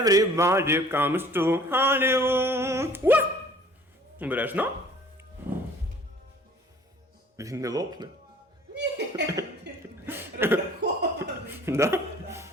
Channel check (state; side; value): normal; both; correlation 0.53